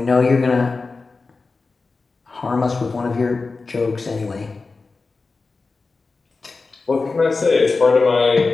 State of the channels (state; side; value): quieter; right; 4.0 dB